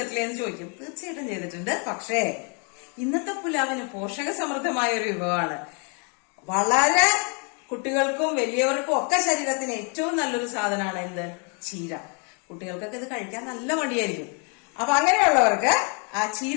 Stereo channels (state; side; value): quieter; right; 36.9 dB